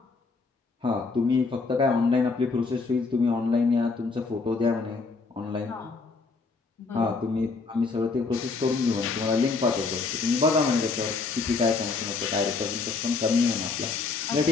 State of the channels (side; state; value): right; quieter; 4.3 dB